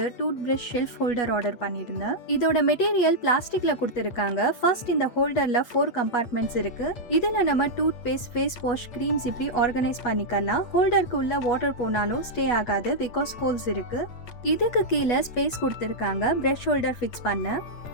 tooth brush shelf holder order பண்ணியிருந்தேன். இதோட மெட்டீரியல் பிளாஸ்டிக்ல கொடுத்துருக்காங்க. ஃபர்ஸ்ட் இந்த ஹோல்டர்ல 4 கம்பார்ட்மெண்ட்ஸ் இருக்கு. இதுல நம்ம toothpaste, face wash, creams இப்படி ஆர்கனைஸ் பண்ணிக்கலாம். ஹோல்டருக்கு உள்ள வாட்டர் போனாலும் ஸ்டே ஆகாது பிகாஸ் ஹோல்ஸ் இருக்கு. இதுக்கு கீழே ஸ்பேஸ் கொடுத்துருக்காங்க பிரஷ் ஹோல்டர் ஃபிக்ஸ் பண்ண.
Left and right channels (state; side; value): late; right; 8.3 ms